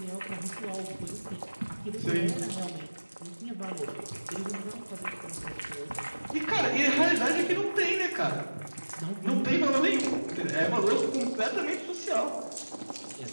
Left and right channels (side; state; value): both; inverted; correlation -1.00